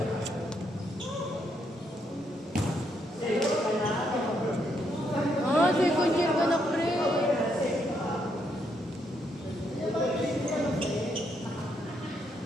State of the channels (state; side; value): normal; both; correlation 0.76